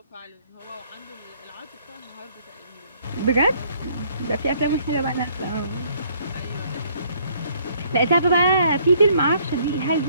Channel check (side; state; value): both; inverted; correlation -0.64